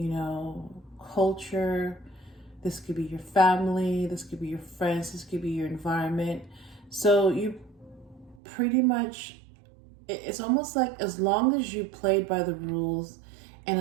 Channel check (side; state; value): left; drops out; at 8.4 s